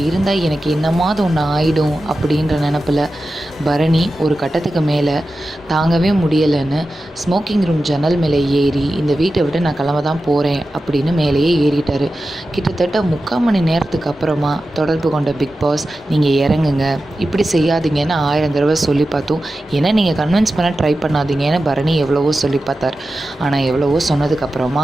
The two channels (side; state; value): both; normal; correlation 0.93